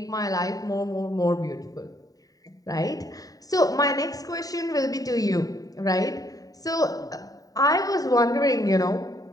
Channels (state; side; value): late; right; 0.18 ms